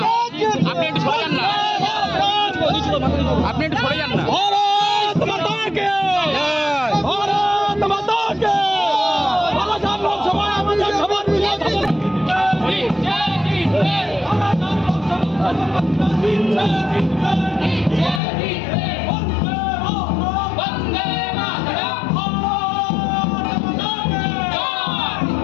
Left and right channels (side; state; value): right; drops out; at 18.2 s